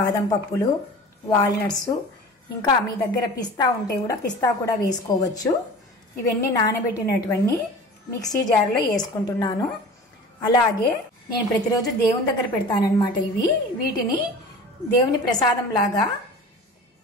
పప్పులు, వాల్నట్స్, ఇంకా మీ దగ్గర పిస్తా ఉంటే కూడా పిస్తా కూడా వేసుకోవచ్చు. ఇవన్నీ నానబెట్టినటువన్నీ మిక్సీ జార్లో వేసుకుంటున్నాను. అలాగే నేను ప్రతిరోజు దేవుని దగ్గర పెడతానన్నమాట. వీటిని దేవుని ప్రసాదం లాగా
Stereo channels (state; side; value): normal; both; correlation 0.39